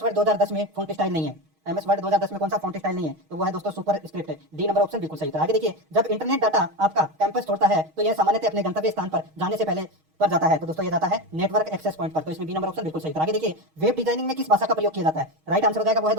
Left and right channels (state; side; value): late; left; 6.4 ms